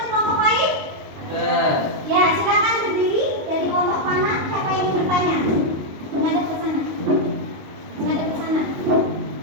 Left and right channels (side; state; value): left; late; 22 ms